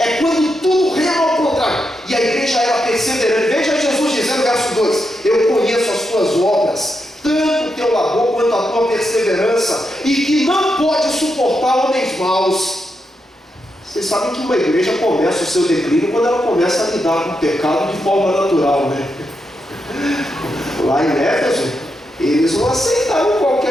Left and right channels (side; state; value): both; normal; correlation 0.84